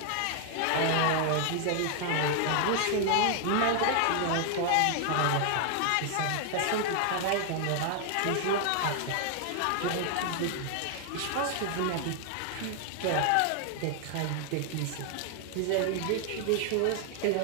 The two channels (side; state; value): both; different; correlation 0.00